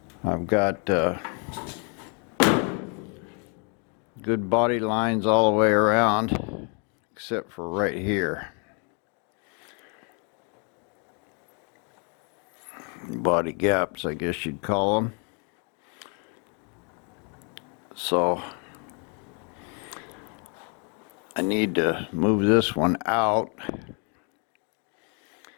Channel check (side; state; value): right; quieter; 37.9 dB